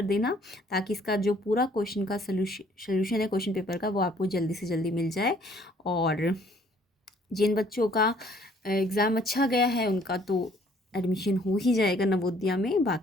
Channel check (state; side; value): normal; both; correlation 0.60